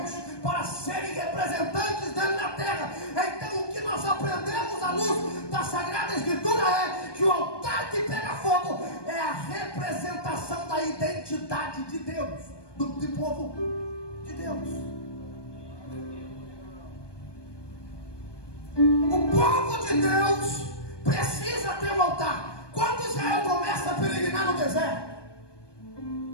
para serem representantes dele na terra. Então o que nós aprendemos à luz da Sagrada Escritura é que o altar que pega fogo é a representação da identidade de Deus, do povo de Deus. O povo de Deus precisa ter um altar. Quando Israel começa a peregrinar no deserto,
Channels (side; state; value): right; late; 1.2 ms